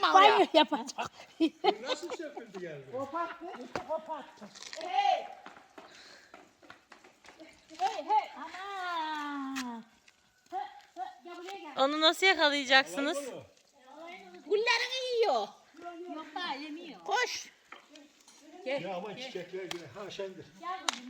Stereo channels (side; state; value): both; identical; correlation 1.00